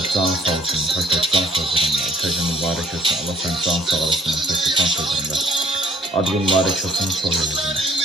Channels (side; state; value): both; normal; correlation 0.60